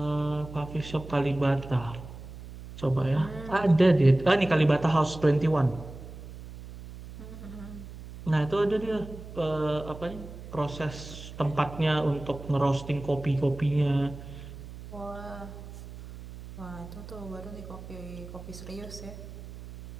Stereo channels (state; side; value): noise; right; hum, 13 dB below the sound